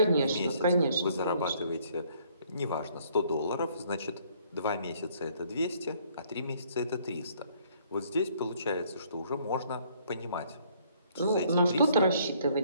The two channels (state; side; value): inverted; both; correlation -0.63